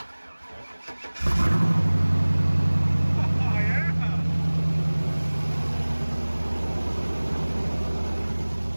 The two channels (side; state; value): both; inverted; correlation -1.00